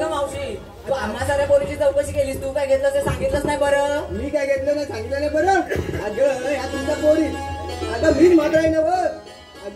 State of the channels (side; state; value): both; identical; correlation 1.00